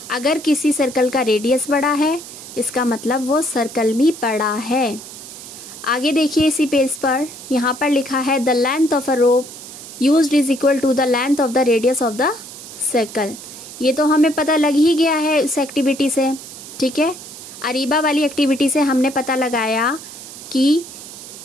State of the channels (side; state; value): right; noise; hiss, 14 dB below the sound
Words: अगर किसी सर्कल का रेडियस बड़ा है इसका मतलब वो सर्कल भी बड़ा है। आगे देखिए इसी पेज पर, यहाँ पर लिखा है, the length of a rope used is equal to the length of the radius of the circle. ये तो हमें पता लग ही गया है इस एक्टिविटी से। ठीक है, अरीबा वाली एक्टिविटी से हमने पता लगाया कि